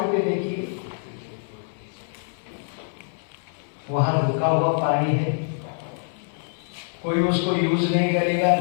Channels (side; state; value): right; silent; digital silence